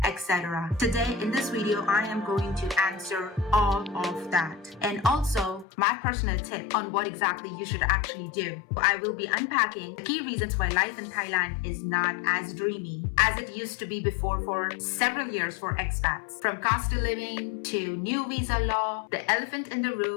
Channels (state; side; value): drops out; right; at 5.7 s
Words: etc. Today in this video, I am going to answer all of that. And also my personal tip on what exactly you should actually do. I will be unpacking the key reasons why life in Thailand is not as dreamy as it used to be before for several years for expats. From cost of living to new visa law, the elephant in the